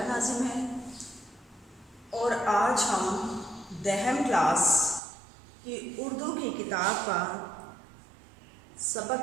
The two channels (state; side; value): drops out; left; at 5.0 s